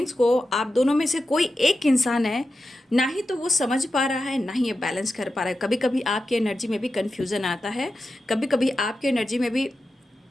को आप दोनों में से कोई एक इंसान है, ना ही तो वो समझ पा रहा है, ना ही ये बैलेंस कर पा रहा है। कभी कभी आपकी एनर्जी में भी कन्फ्यूज़न आता है, कभी कभी आपकी एनर्जी में भी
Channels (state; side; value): normal; both; correlation 0.91